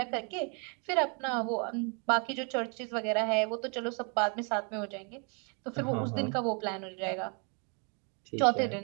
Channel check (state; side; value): quieter; left; 36.7 dB